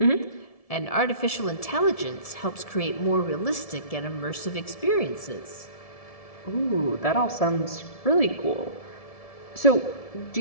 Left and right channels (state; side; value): late; right; 1.7 ms